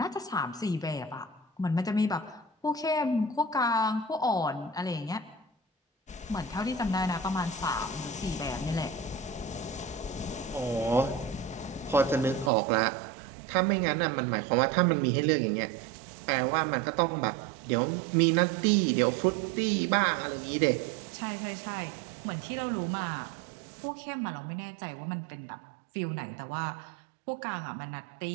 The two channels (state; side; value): drops out; left; at 12.5 s